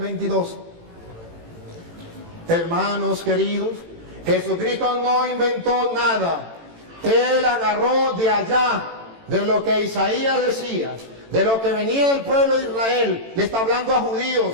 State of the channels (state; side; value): late; left; 18 ms